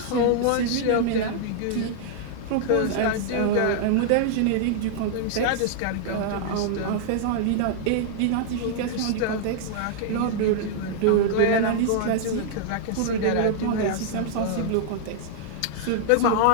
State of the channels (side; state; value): both; different; correlation -0.01